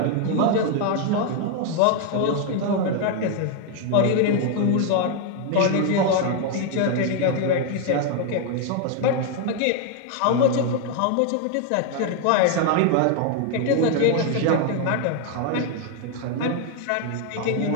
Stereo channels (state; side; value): different; both; correlation 0.00